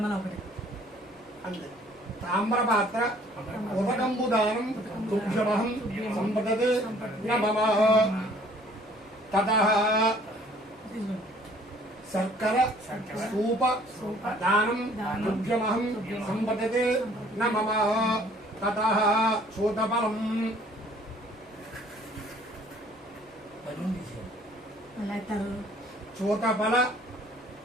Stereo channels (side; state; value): both; normal; correlation 0.57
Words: ఒకటి అంతే. తామ్రపాత్ర ఉదకంబుదానం దుగ్ధమహం సంపదతే నమః. తతః శర్కర స్తూప దానం దుగ్ధమహం సంపదతే నమః. తతః చూతఫలం